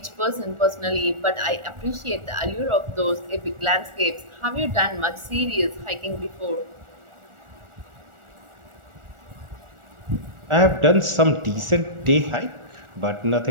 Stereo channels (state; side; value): late; left; 1.4 ms